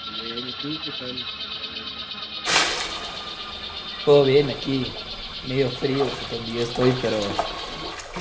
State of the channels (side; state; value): both; identical; correlation 1.00